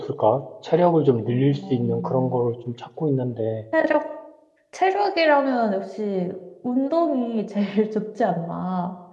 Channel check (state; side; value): identical; both; correlation 1.00